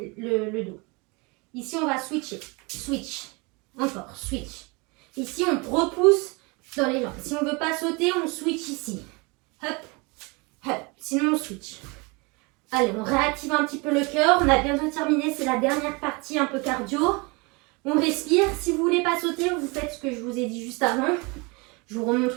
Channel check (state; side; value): quieter; left; 28.1 dB